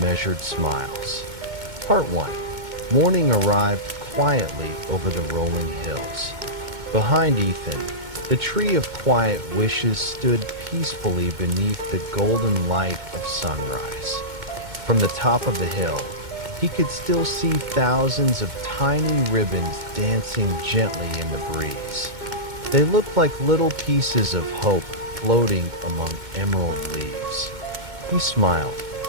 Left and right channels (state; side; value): late; left; 2.2 ms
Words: Smiles. Part 1. Morning arrived quietly over the rolling hills. Behind Ethan, the tree of quiet wishes stood peacefully beneath the golden light of sunrise. From the top of the hill, he could still see thousands of tiny ribbons dancing gently in the breeze. They looked like little pieces of hope floating among emerald leaves. He smiled.